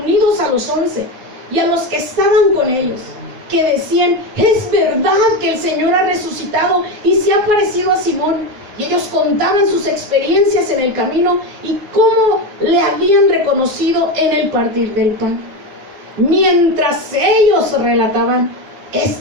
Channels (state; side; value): late; left; 9.6 ms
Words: a los 11 y a los que estaban con ellos, que decían: es verdad que el Señor ha resucitado y se ha aparecido a Simón. Y ellos contaban sus experiencias en el camino y cómo le habían reconocido en el partir del pan. Mientras ellos relataban